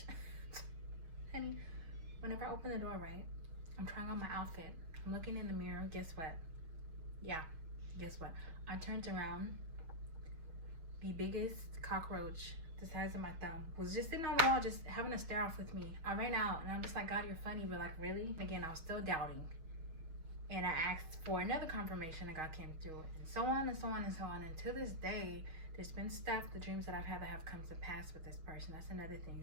Honey, whenever I open the door, right, I'm trying on my outfit, I'm looking in the mirror, guess what? Yeah, guess what? I turned around, the biggest cockroach the size of my thumb was just sitting on the wall, just having a stare off with me. I ran out and I'm just like, God, you're funny, but like, really? Again, I was still doubting. And I asked for another confirmation, and God came through, and so on and so on and so on. And to this day, there's been stuff, the dreams that I've had that have come to pass with this person. That's another thing.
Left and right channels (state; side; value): late; left; 6.3 ms